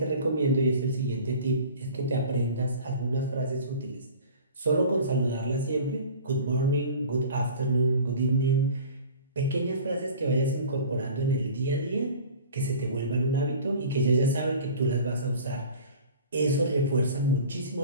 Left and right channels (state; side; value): inverted; both; correlation -0.42